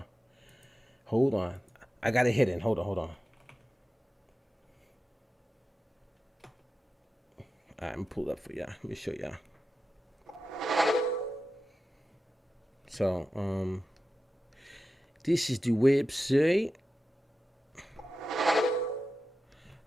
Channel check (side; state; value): both; normal; correlation 0.92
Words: on. I got it hidden. Hold on. All right, I'm gonna pull it up for y'all. Let me show y'all. So, this is the website